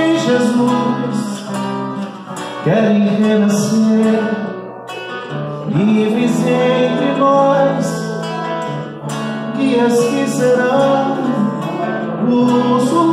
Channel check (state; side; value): identical; both; correlation 1.00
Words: Jesus, querem renascer, livres entre nós, guias que serão